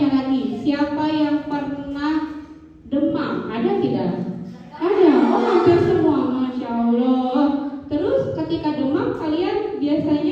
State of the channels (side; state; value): both; identical; correlation 1.00